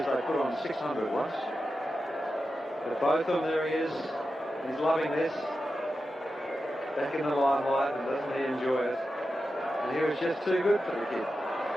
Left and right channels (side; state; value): both; normal; correlation 0.90